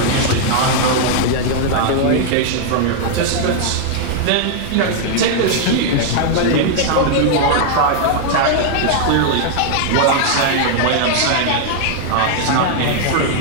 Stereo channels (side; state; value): both; different; correlation 0.00